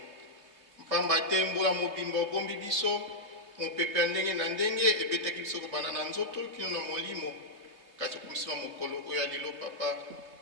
Mpamba te mbula mobimba obombi biso mopepe ya ndenge na ndenge ebetaki biso kobanda na nzoto kino na molimo kasi okomisima mokolo oyo ya lelo papa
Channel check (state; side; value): late; left; 3.2 ms